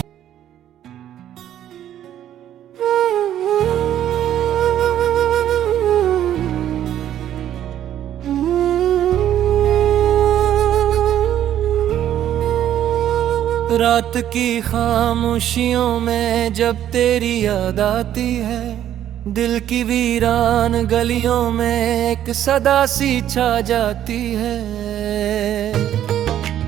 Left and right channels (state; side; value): quieter; left; 11.2 dB